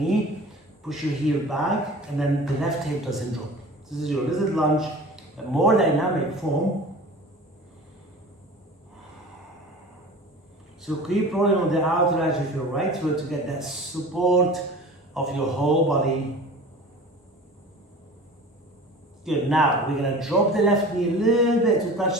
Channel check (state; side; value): normal; both; correlation 0.39